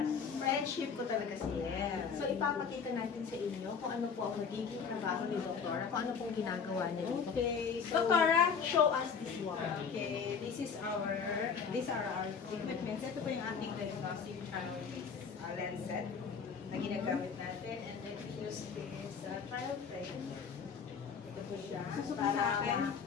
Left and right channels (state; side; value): quieter; right; 6.2 dB